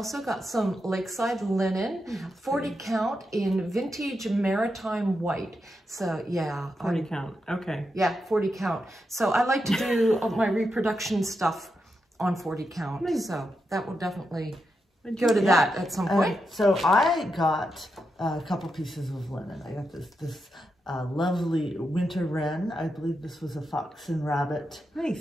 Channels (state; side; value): normal; both; correlation 0.85